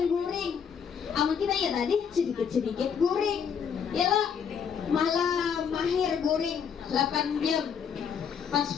guring. Amun kita ya tadi sedikit-sedikit guring. Yalah, malam mahir guring 8 jam. Pas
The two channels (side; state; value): right; quieter; 7.1 dB